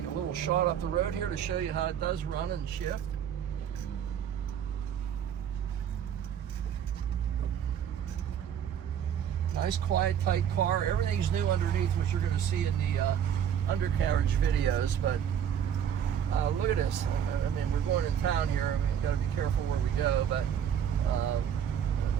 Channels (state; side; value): quieter; left; 8.9 dB